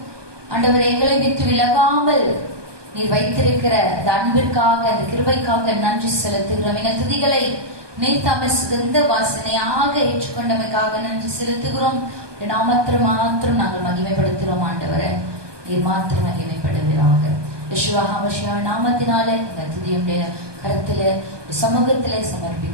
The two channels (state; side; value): late; left; 1.2 ms